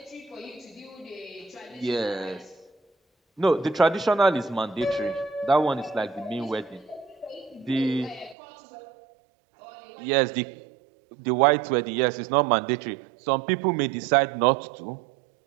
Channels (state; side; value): drops out; left; at 8.3 s